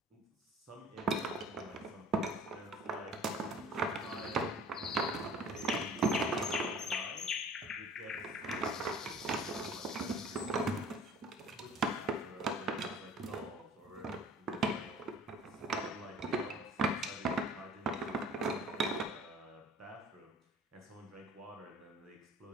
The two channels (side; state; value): both; normal; correlation 0.48